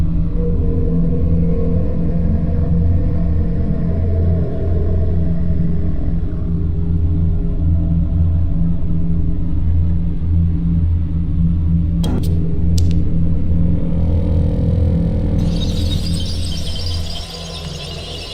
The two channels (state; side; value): identical; both; correlation 1.00